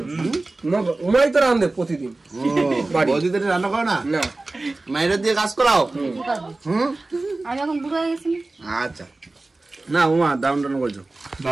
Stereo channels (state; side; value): quieter; left; 3.1 dB